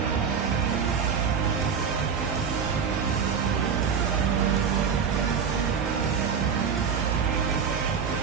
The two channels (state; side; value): quieter; left; 6.6 dB